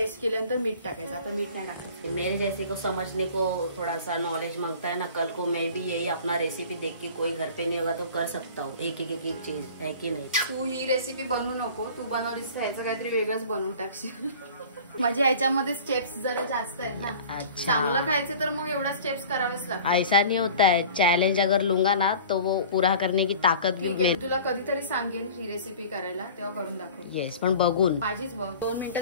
केल्यानंतर मीठ टाकायचं. आता मीठ नाही टाकायचं. मेरे जैसे को समझने को थोड़ा सा नॉलेज मांगता है ना, कल को मैं भी यही अपना रेसिपी देख के कोई घर पे नहीं होगा तो कर सकता हूँ. एक चीज है की नाही. तू ही रेसिपी बनवू नको. तू बनवलीस ह्याचं काहीतरी वेगळंच बनवून टाकशील. म्हणजे ह्याच्यामध्ये स्टेप्स जरा जास्त आहेत ना. चांगलं खायचं तर मग एवढा स्टेप्स करावेच लागतात. ऐसा नहीं होता है. चैलेंज अगर लूंगा ना तो वो पूरा करने की ताकत भी मिळेल. तुला कधीतरी सांगेन ही रेसिपी करायला, तेव्हा करून दाखव. येस, पण बघून. माझीच बघ. 2 मिनिटं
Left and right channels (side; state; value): both; inverted; correlation -0.43